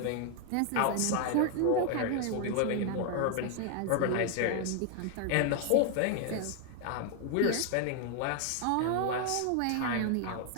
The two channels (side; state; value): both; different; correlation 0.00